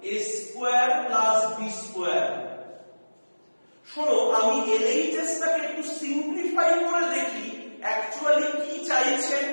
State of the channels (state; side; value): inverted; both; correlation -1.00